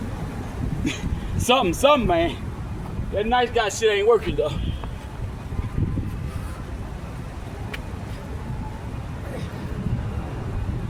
something, man. That nice guy shit ain't working though.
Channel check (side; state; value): both; identical; correlation 1.00